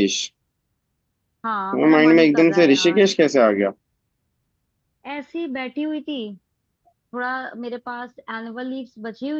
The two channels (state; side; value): identical; both; correlation 1.00